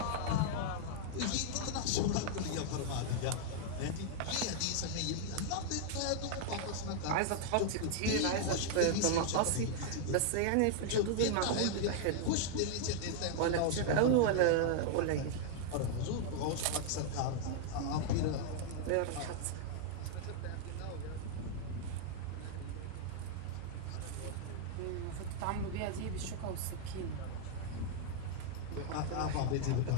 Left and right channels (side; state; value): both; different; correlation 0.00